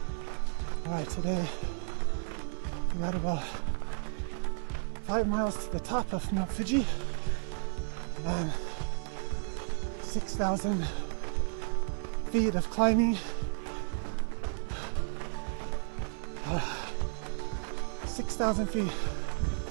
Alright, today we got about 5 miles to the top of Mount Fuji and 6,000 feet of climbing. 6,000 feet,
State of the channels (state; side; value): silent; left; 56 dB below the other